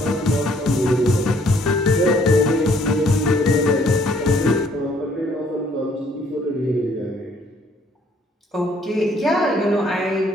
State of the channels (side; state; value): both; normal; correlation 0.64